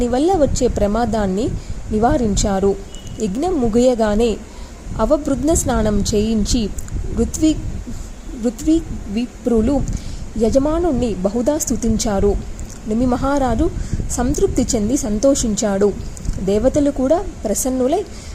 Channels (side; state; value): both; identical; correlation 1.00